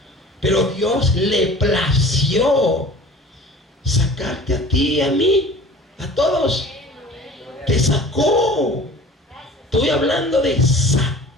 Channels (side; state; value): both; normal; correlation 0.43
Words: Pero Dios le plació sacarte a ti y a mí, a todos. Te sacó. Estoy hablando de sacar.